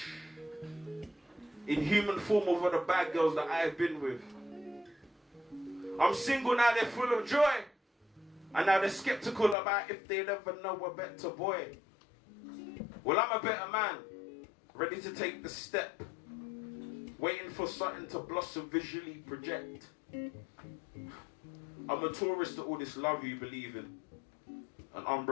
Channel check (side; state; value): right; drops out; at 9.6 s